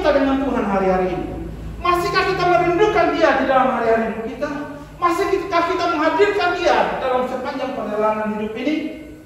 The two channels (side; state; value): both; identical; correlation 1.00